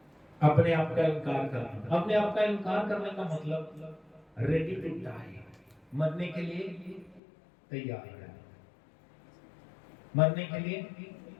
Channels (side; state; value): right; drops out; at 7.2 s